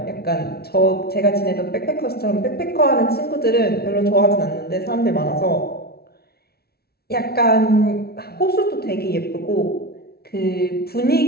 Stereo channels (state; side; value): late; right; 0.45 ms